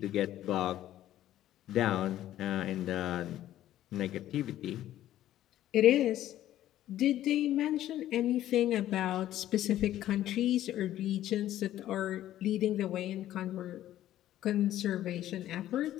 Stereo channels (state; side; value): quieter; right; 13.0 dB